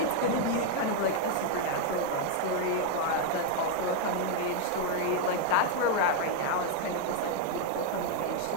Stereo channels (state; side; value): different; both; correlation 0.00